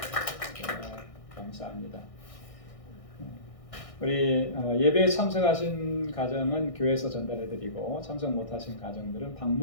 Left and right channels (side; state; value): right; late; 1.6 ms